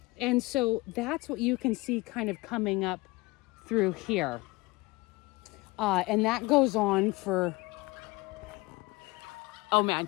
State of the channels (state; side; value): quieter; right; 22.9 dB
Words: And so that's what you can see kind of coming up through here. And that goes on for, oh man,